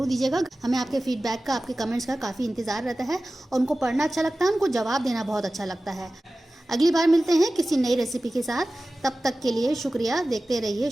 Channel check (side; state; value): both; normal; correlation 0.96